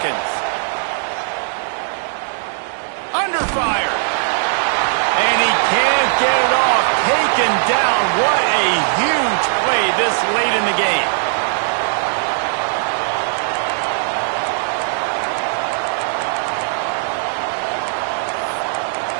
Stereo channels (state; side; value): silent; left; digital silence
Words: Under fire. And he can't get it off. Taken down. What a huge play this late in the game.